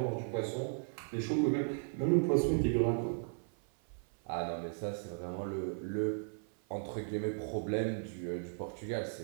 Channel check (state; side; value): silent; left; 54 dB below the other